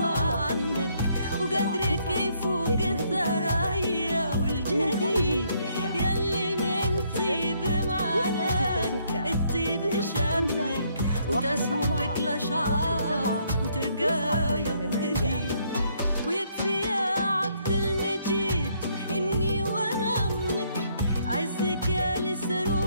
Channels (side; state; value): both; inverted; correlation -0.69